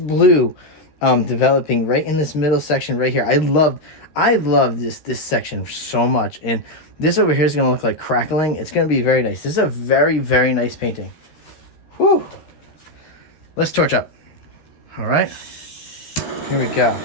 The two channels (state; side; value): late; right; 13 ms